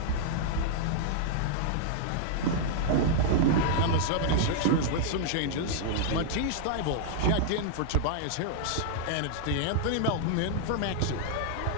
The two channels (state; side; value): different; both; correlation -0.01